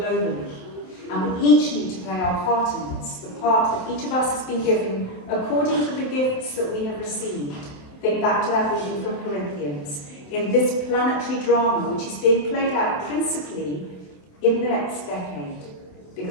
And we each need to play our part in this, the part that each of us has been given according to the gifts that we have received. Think back to that reading from Corinthians. In this planetary drama, which is being played out principally in the next decade,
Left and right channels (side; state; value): right; late; 27 ms